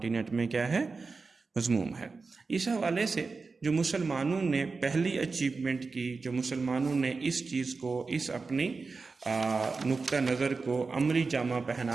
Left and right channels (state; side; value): quieter; left; 4.3 dB